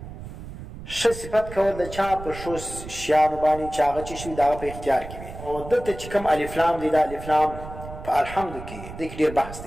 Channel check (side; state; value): right; noise; rumble, 12 dB below the sound